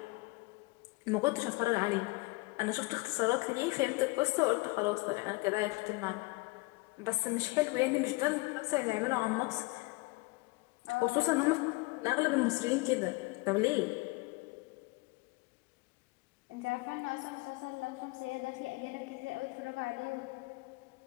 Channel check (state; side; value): quieter; right; 24.1 dB